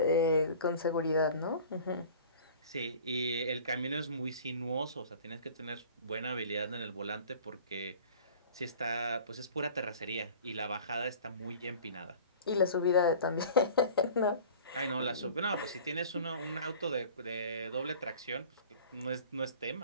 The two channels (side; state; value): both; inverted; correlation -0.45